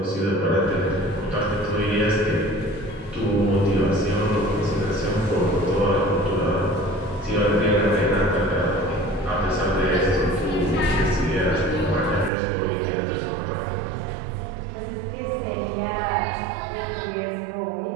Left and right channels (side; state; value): left; drops out; at 12.3 s